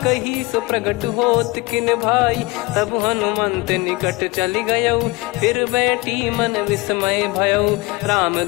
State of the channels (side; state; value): right; quieter; 23.2 dB